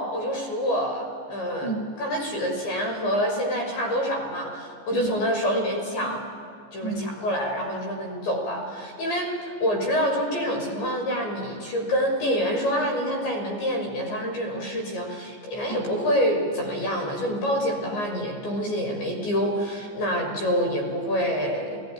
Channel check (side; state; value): right; late; 15 ms